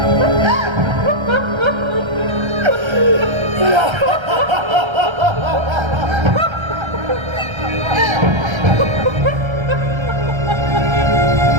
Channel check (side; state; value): left; late; 1.3 ms